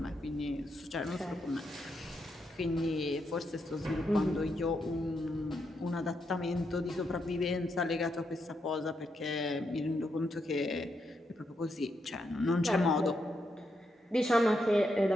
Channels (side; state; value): both; normal; correlation 0.81